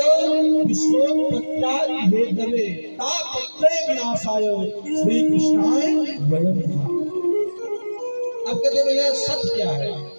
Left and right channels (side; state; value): both; inverted; correlation -1.00